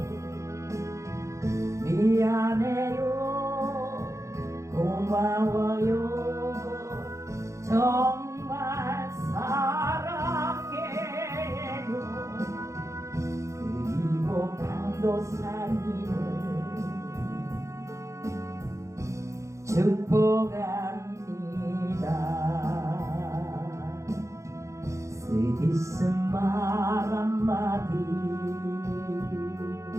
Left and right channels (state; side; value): late; left; 0.15 ms